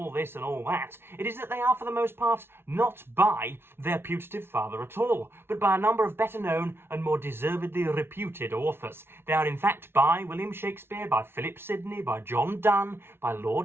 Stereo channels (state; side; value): late; left; 0.11 ms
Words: this and all that. It is that they are, for the most part, not by their putative father at all, but by a number of better known and more deservedly reputed authors. They are, in fact, by William Shakespeare, by Philip Sidney, by John Donne, by